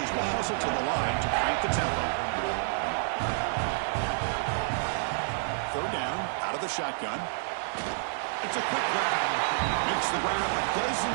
will hustle to the line to crank the tempo. 3rd down, the shotgun. It's a quick grab. Makes the ground, but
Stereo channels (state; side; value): silent; left; digital silence